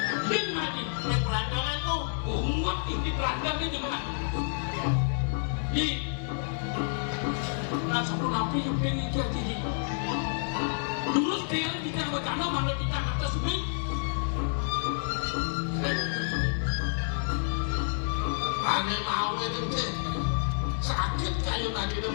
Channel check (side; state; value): right; silent; 58 dB below the other